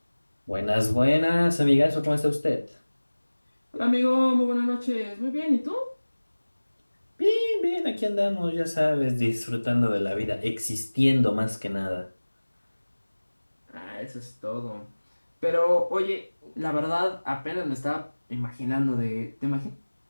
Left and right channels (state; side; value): inverted; both; correlation -1.00